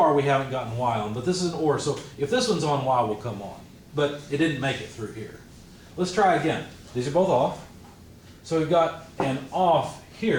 we haven't gotten Y on, but this is an OR. So if this one's on, Y will come on. But it didn't make it through here. Let's try again. These are both off. So we've got an off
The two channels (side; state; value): both; identical; correlation 1.00